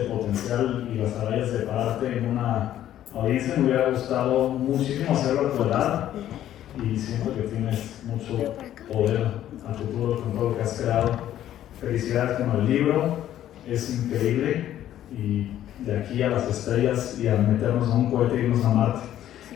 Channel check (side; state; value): right; quieter; 12.0 dB